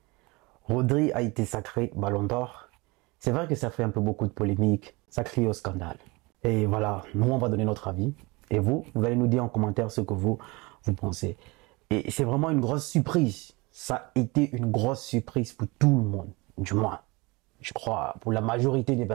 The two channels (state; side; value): quieter; left; 25.0 dB